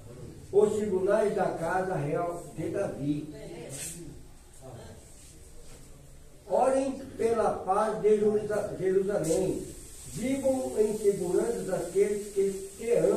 os tribunais da casa real de Davi. Orem pela paz de Jerusalém, vivam em segurança daqueles que te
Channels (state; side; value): identical; both; correlation 1.00